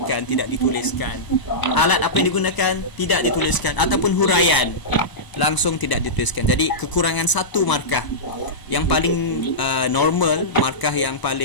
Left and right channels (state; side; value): late; right; 1.0 ms